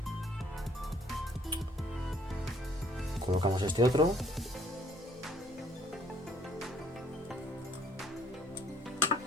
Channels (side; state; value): both; normal; correlation 0.61